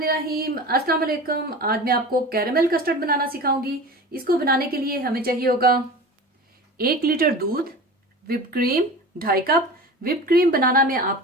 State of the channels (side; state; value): both; normal; correlation 0.35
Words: अस्सलाम वालेकुम। आज मैं आपको कैरेमल कस्टर्ड बनाना सिखाऊंगी। इसको बनाने के लिए हमें चाहिए होगा 1 लीटर दूध, whip cream 2.5 cup. Whip cream बनाना मैं